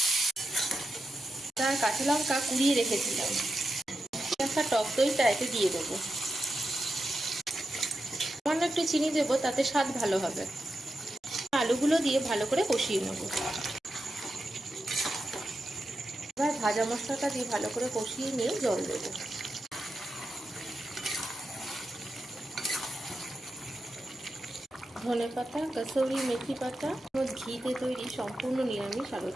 তার কাঁচা লঙ্কা কুড়িয়ে রেখেছিলাম। একটা টক দইটা এতে দিয়ে দেবো। সামান্য একটু চিনি দেবো, তাতে স্বাদ ভালো হবে। আলুগুলো দিয়ে ভালো করে কষিয়ে নেব। এবার ভাজা মশলাটা দিয়ে ভালো করে কষিয়ে নিয়ে জল দেবো। ধনেপাতা, কাসুরি মেথি পাতা, ঘিতে তৈরি সম্পূর্ণ নিরামিষ আলুর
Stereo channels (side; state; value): both; normal; correlation 0.89